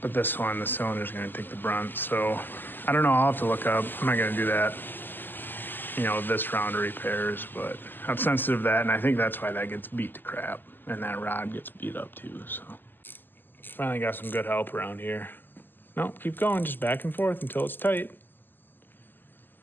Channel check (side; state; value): right; late; 0.092 ms